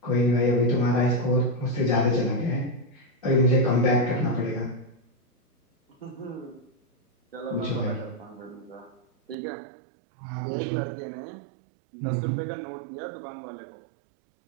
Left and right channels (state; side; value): drops out; left; at 9.3 s